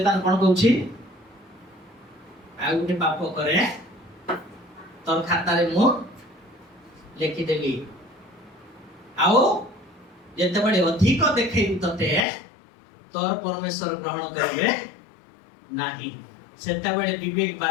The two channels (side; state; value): right; drops out; at 12.2 s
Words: କଣ କହୁଛି ଆଉ ଗୋଟେ ପାପ କରେ ତୋର ଖାତାରେ ମୁଁ ଲେଖିଦେଲି ଆଉ ଯେତେବେଳେ ଅଧିକ ଦେଖେଇବି ତତେ ତୋର ପରମେଶ୍ୱର ଗ୍ରହଣ କରିବେ ନାହିଁ ସେତେବେଳେ ବିବେକ